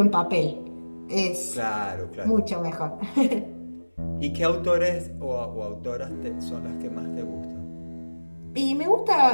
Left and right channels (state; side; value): inverted; both; correlation -1.00